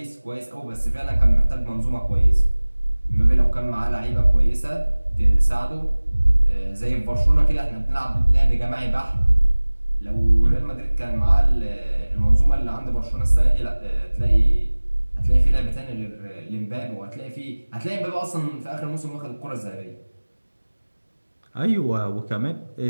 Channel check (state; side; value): inverted; both; correlation -1.00